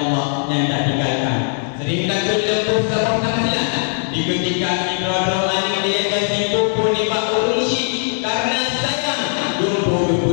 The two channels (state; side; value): silent; right; 67 dB below the other